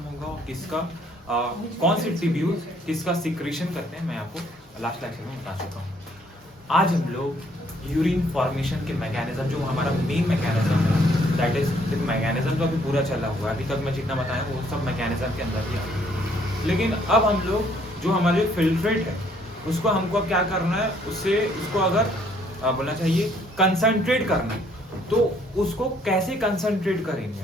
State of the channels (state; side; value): normal; both; correlation 0.65